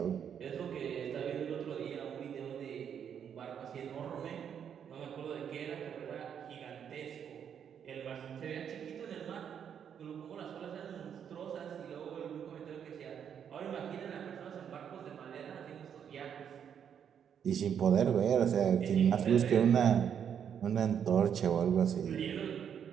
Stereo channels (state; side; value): quieter; left; 8.2 dB